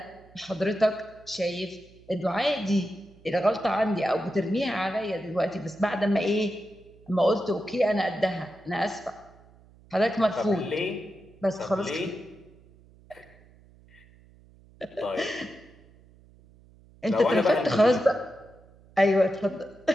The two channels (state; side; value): noise; right; hum, 26 dB below the sound